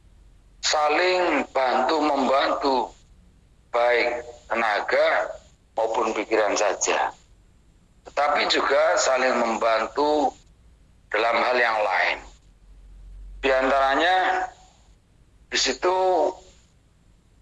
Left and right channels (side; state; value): both; identical; correlation 1.00